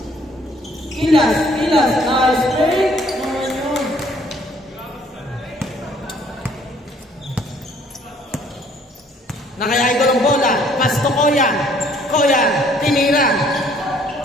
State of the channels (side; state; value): both; normal; correlation 0.61